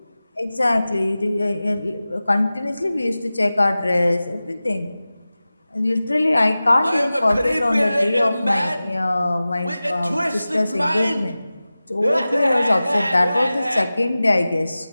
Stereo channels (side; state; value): both; inverted; correlation -0.96